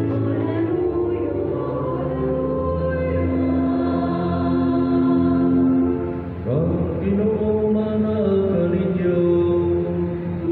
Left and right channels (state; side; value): identical; both; correlation 1.00